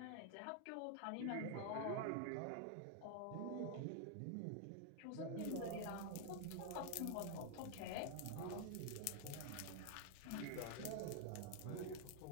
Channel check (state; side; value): different; both; correlation 0.00